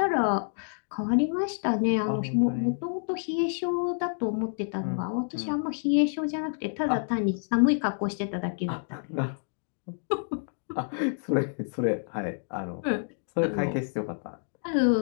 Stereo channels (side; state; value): right; silent; digital silence